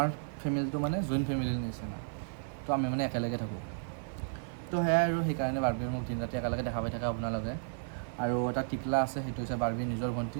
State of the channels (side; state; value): left; silent; 56 dB below the other